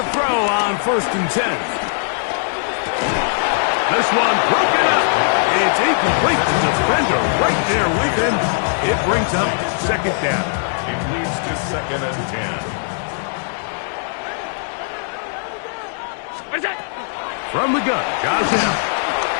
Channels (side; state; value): right; silent; 66 dB below the other